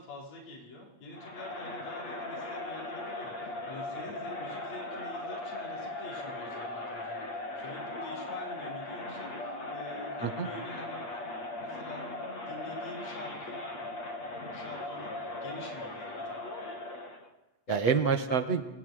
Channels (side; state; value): right; late; 8.0 ms